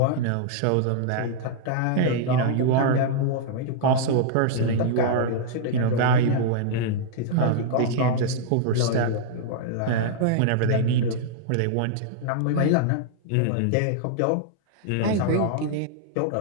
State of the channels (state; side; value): different; both; correlation -0.01